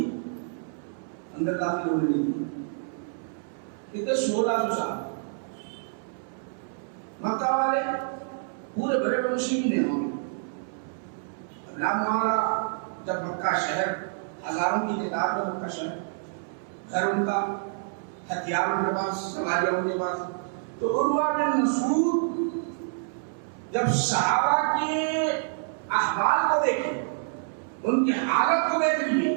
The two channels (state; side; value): silent; left; 60 dB below the other